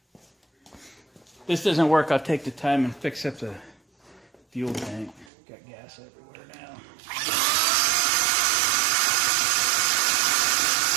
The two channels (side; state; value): left; drops out; at 5.3 s